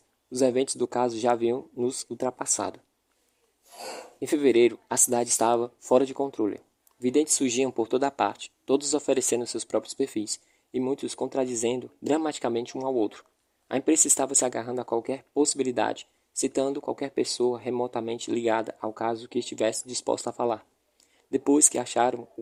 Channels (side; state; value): both; identical; correlation 1.00